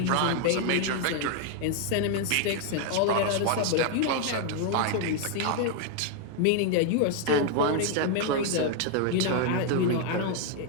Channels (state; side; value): different; both; correlation 0.00